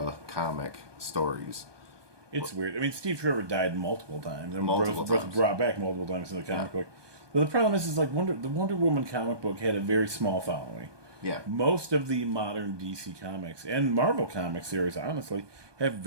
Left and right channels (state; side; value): late; left; 1.2 ms